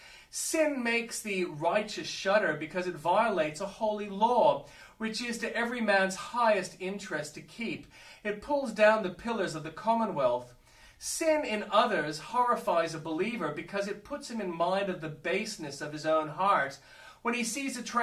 Sin makes the righteous shudder because it violates a holy law, which is to every man's highest interest to keep. It pulls down the pillars of the commonwealth. Sin in others horrifies a believer because it puts him in mind of the baseness of his own heart. When he sees a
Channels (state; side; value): identical; both; correlation 1.00